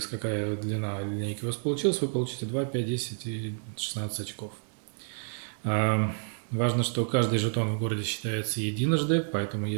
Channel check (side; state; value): left; silent; 58 dB below the other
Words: какая длина линейки у вас получилась, вы получите 2, 5, 10 и 16 очков. Важно, что каждый жетон в городе считается единожды, поэтому